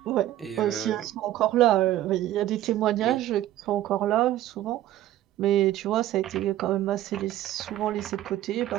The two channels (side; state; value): left; quieter; 13.7 dB